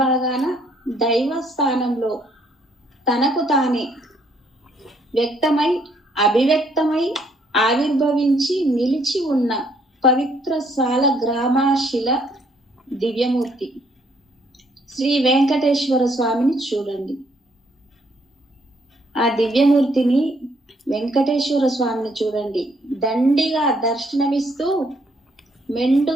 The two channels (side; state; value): both; normal; correlation 0.68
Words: భాగాన దైవ స్థానంలో తనకు తానే వ్యక్తమై అభివ్యక్తమై ఆవిర్భవించి నిలిచి ఉన్న పవిత్ర సాల గ్రామాశిల దివ్యమూర్తి శ్రీ వెంకటేశ్వర స్వామిని చూడండి. ఆ దివ్యమూర్తిని వెంకటేశ్వర స్వామిని చూడండి. దండిగా దర్శనమిస్తూ